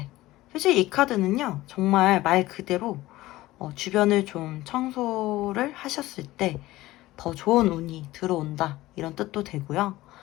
사실 이 카드는요, 정말 말 그대로 주변을 좀 청소를 하셨을 때 더 좋은 운이 들어온다, 이런 뜻도 되고요.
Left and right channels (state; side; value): quieter; right; 17.3 dB